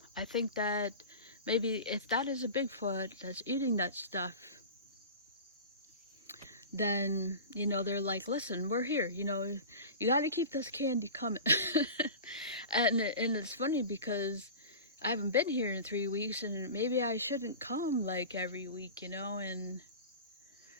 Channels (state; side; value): inverted; both; correlation -0.33